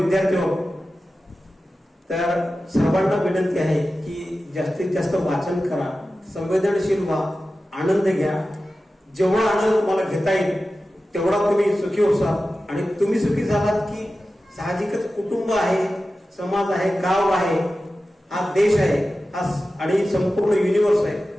आहोत, तर सर्वांना विनंती आहे की जास्तीत जास्त वाचन करा, संवेदनशील व्हा, आनंद घ्या. जेवढा आनंद तुम्हाला घेता येईल तेवढा तुम्ही सुखी होसाल. आणि तुम्ही सुखी झालात की साहजिकच कुटुंब आहे, समाज आहे, गाव आहे, हा देश आहे, हा आणि संपूर्ण युनिवर्स आहे,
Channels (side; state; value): both; normal; correlation 0.94